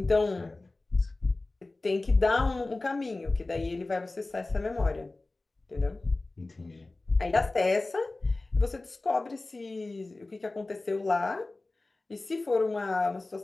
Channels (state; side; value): quieter; right; 3.1 dB